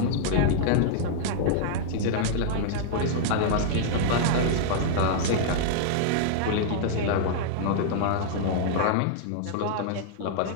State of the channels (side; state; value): both; different; correlation -0.01